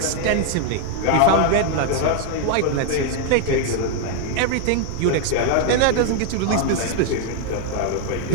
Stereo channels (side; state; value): both; different; correlation 0.00